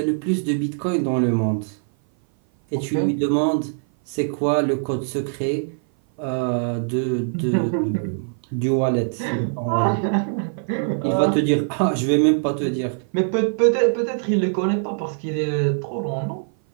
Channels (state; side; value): silent; left; 57 dB below the other